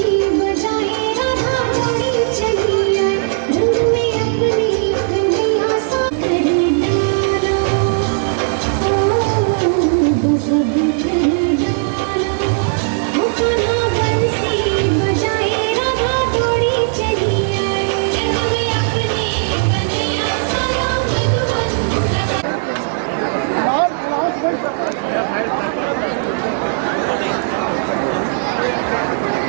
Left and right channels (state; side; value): silent; left; 67 dB below the other